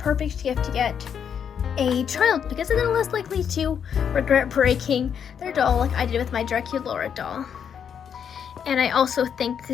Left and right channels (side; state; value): right; quieter; 7.8 dB